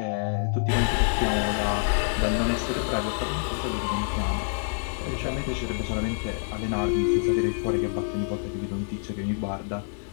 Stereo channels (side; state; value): right; silent; digital silence